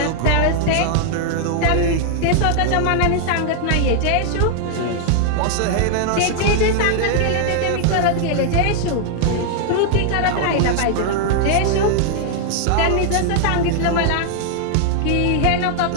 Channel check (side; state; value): both; different; correlation 0.00